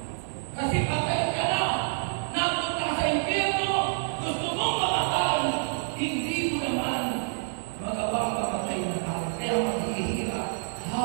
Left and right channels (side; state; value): left; silent; digital silence